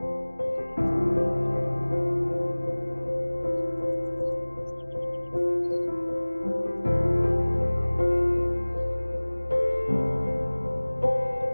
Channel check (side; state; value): both; inverted; correlation -1.00